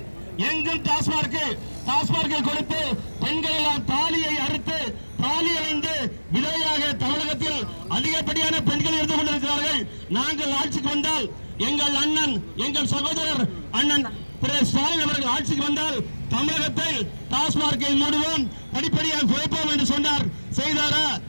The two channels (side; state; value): both; inverted; correlation -1.00